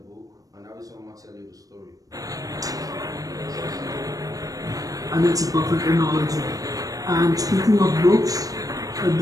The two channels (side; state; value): left; late; 0.17 ms